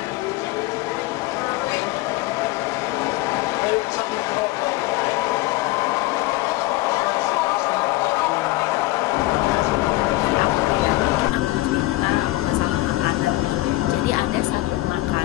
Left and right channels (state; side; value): quieter; right; 18.7 dB